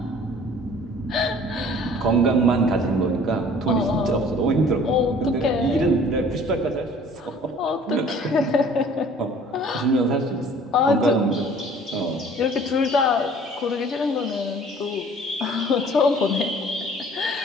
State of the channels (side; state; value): both; normal; correlation 0.51